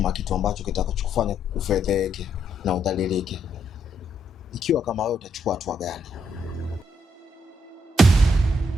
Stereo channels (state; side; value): normal; both; correlation 0.75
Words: kitu ambacho kitakachokufanya ufedheke na udhalilike? Ikiwa kama wewe utachukua hatua gani?